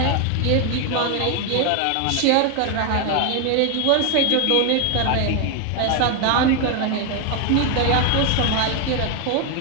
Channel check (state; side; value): different; both; correlation 0.01